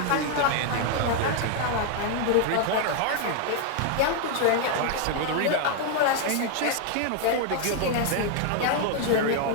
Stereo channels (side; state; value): both; different; correlation 0.00